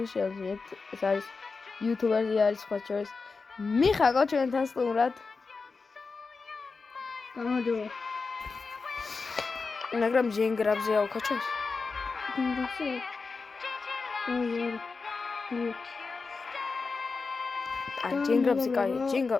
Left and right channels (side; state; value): right; quieter; 4.4 dB